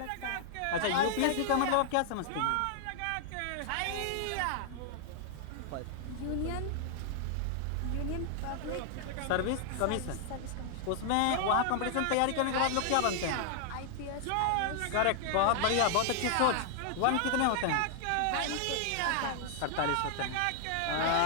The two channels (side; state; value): both; different; correlation 0.00